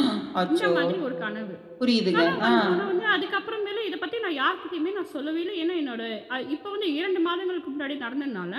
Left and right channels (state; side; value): identical; both; correlation 1.00